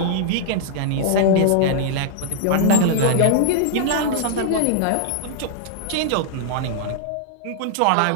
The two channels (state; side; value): different; both; correlation -0.01